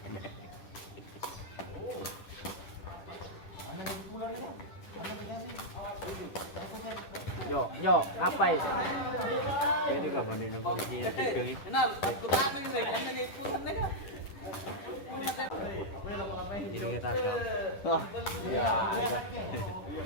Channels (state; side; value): late; right; 10 ms